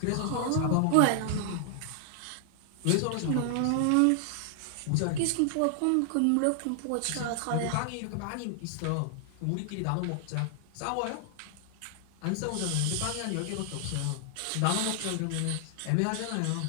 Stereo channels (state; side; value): different; both; correlation 0.00